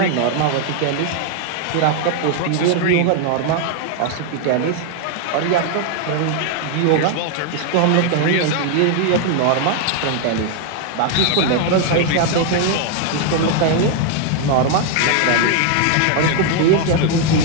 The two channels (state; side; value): different; both; correlation 0.00